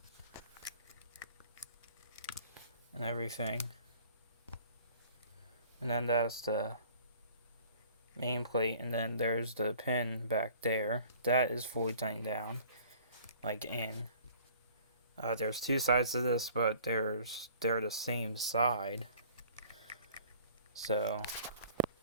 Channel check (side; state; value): both; inverted; correlation -0.52